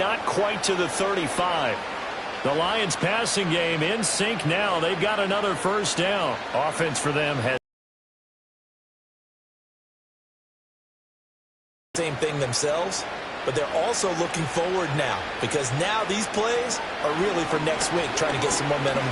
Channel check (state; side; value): identical; both; correlation 1.00